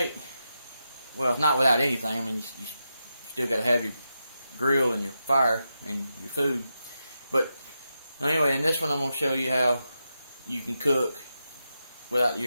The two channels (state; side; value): inverted; both; correlation -0.88